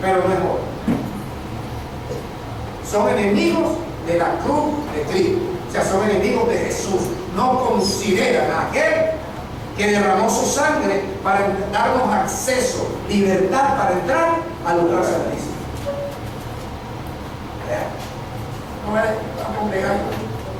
pero no es oro. Son enemigos de la cruz de Cristo. O sea, son enemigos de Jesús. No consideran a aquel que derramó su sangre para darnos acceso, libertad para entrar al lugar santísimo. No es a congregar.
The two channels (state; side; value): identical; both; correlation 1.00